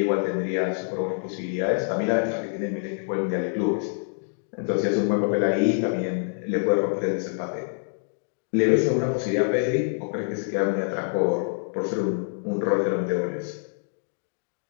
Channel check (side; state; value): right; silent; digital silence